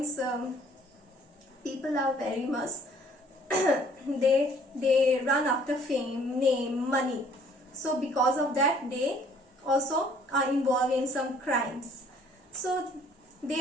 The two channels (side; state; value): both; normal; correlation 0.58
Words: people are very much they run after fame, name, money. So because of that, they also are involved in some crimes. So they